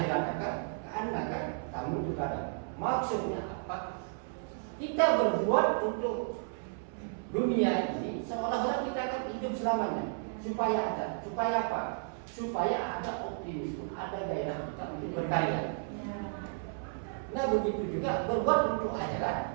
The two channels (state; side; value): silent; left; 56 dB below the other